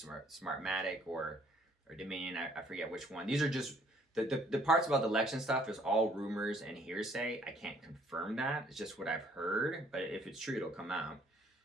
or Dominion. I forget which one. These are just the parts about the election stuff is all rumors and hearsay. I can't confirm that. It's just what I've heard. But if it's true, it'll come out.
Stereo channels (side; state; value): both; normal; correlation 0.61